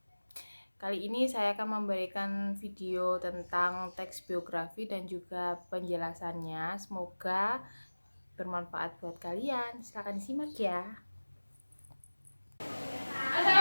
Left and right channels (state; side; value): inverted; both; correlation -1.00